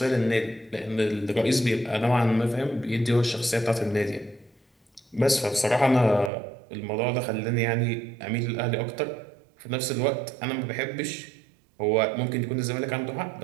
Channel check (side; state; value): left; drops out; at 6.3 s